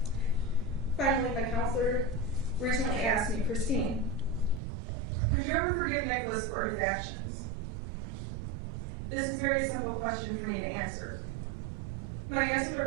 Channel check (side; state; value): left; drops out; at 4.6 s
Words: Finally, my counselor recently asked me, Christine, could you ever forgive Nicholas for his actions? This is a very simple question for me to answer. My answer to